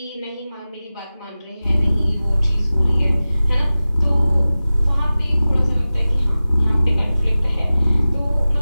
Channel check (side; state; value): both; inverted; correlation -0.96